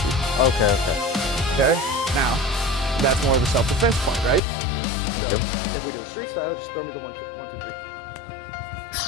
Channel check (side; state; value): right; drops out; at 4.4 s